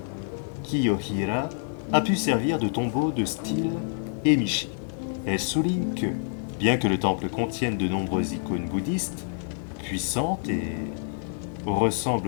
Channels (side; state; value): right; silent; 58 dB below the other